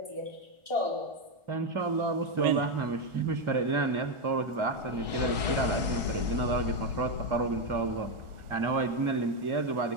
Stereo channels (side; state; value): left; late; 1.4 ms